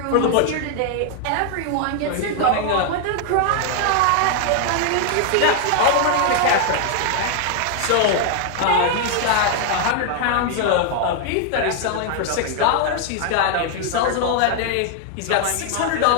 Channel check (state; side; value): different; both; correlation 0.00